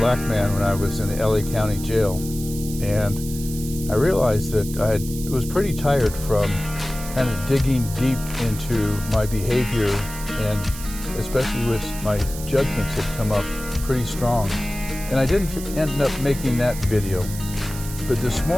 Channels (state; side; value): noise; right; hiss, 12 dB below the sound